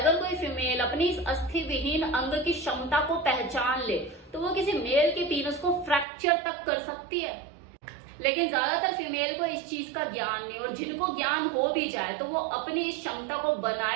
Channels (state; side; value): drops out; left; at 6.1 s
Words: कोई फीमेल अपनी इस अस्थि विहीन अंग की क्षमता को पहचान ले तो वो किसी मेल के पीनस को फ्रैक्चर तक कर सकती है, लेकिन ज्यादातर फीमेल को इस चीज का ज्ञान नहीं, और जिनको ज्ञान हो भी जाए तो वो अपनी इस क्षमता को